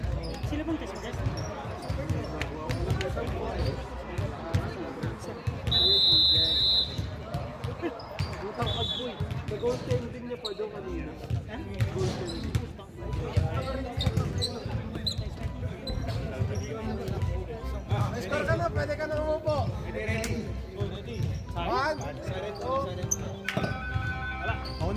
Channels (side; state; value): both; identical; correlation 1.00